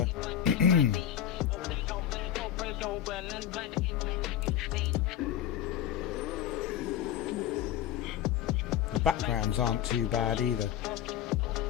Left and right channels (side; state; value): right; quieter; 10.5 dB